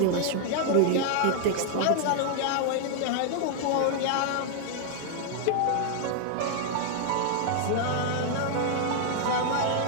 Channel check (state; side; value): different; both; correlation 0.00